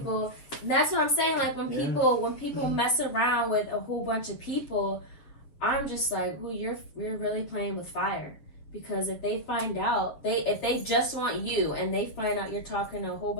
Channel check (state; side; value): late; right; 7.4 ms